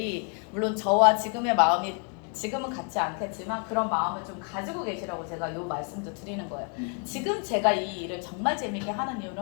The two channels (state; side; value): quieter; right; 39.7 dB